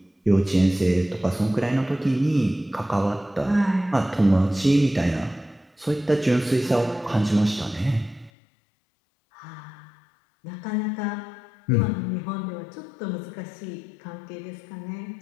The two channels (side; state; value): right; drops out; at 8.3 s